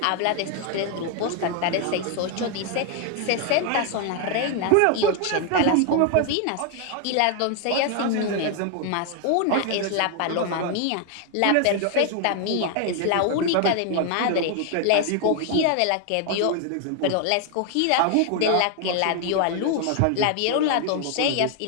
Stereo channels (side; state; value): both; different; correlation 0.00